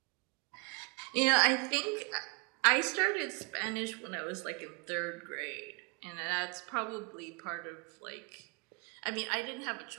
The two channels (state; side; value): quieter; left; 31.1 dB